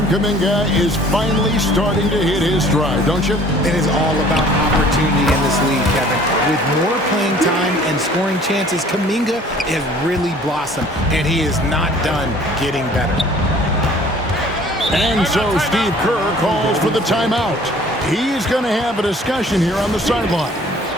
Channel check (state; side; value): normal; both; correlation 0.52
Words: Kuminga is finally starting to hit his stride, don't you? It is all about opportunity in this league, Kevin. With more playing time and scoring chances, Kuminga has really blossomed, and he is not done getting better. And so Steve Kerr calls for the timeout. He's going to have a discussion here on the sideline.